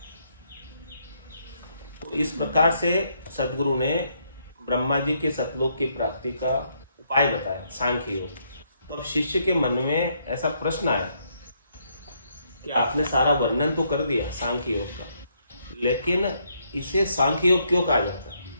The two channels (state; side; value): inverted; both; correlation -0.74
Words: तो इस प्रकार से सदगुरु ने ब्रह्मा जी के सतलोक की प्राप्ति का उपाय बताया, सांख्य योग। तो शिष्य के मन में ऐसा प्रश्न आया कि आपने सारा वर्णन तो कर दिया सांख्य योग का, लेकिन इसे सांख्य योग क्यों कहा जाता है?